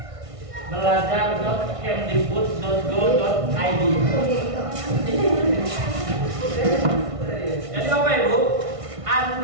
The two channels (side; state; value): left; late; 1.5 ms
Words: belajar.kemdikbud.go.id. Jadi Bapak Ibu,